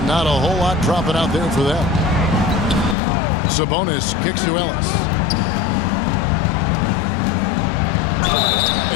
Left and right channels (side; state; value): right; drops out; at 3.0 s